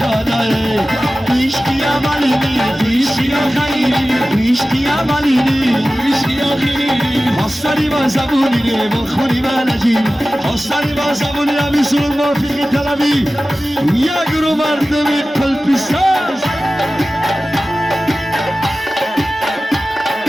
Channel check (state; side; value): normal; both; correlation 0.96